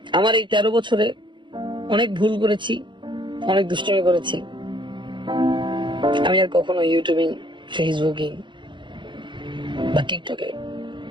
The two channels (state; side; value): late; left; 0.23 ms